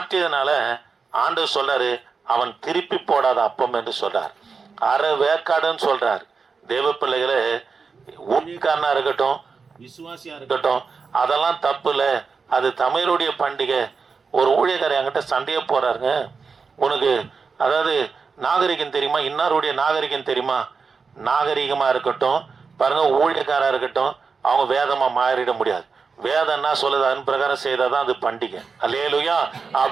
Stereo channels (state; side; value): quieter; left; 5.1 dB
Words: ஆண்டவர் சொல்றாரு அவன் திருப்பி போடாத அப்பம் என்று சொல்றார். அரை வேக்காடுன்னு சொல்றார். தேவ பிள்ளைகளை ஊழியக்காரனா இருக்கட்டும் விசுவாசியா இருக்கட்டும் அதெல்லாம் தப்பு இல்லை. அது தமிழருடைய பண்டிகை. ஒரு ஊழியக்காரர் என்கிட்ட சண்டையே போறாருங்க, உனக்கு அதாவது நாகரிகம் தெரியுமா, இன்னாருடைய நாகரிகம் தெரியுமா? நாகரிகமா இருக்கட்டும் பாருங்க ஊழியக்காரா இருக்கட்டும் அவங்க வேதமா மாறிட முடியாது. வேதம்னா சொல்லுது அதன் பிரகாரம் செய்தாதான் அது பண்டிகை. அல்லேலூயா.